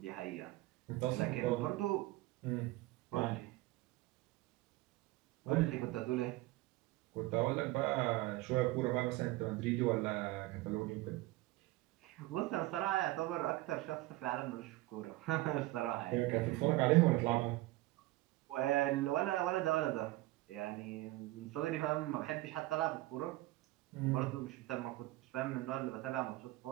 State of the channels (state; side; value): quieter; left; 18.7 dB